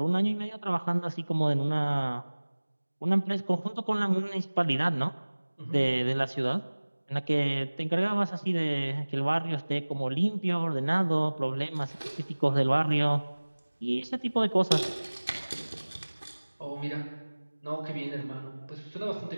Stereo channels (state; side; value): inverted; both; correlation -1.00